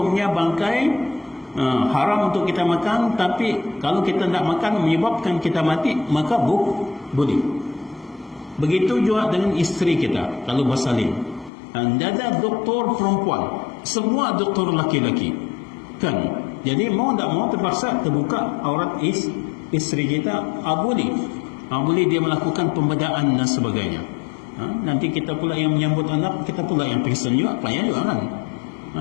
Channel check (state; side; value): drops out; right; at 11.5 s